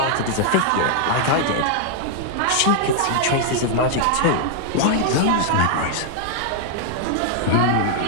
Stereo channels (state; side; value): different; both; correlation -0.01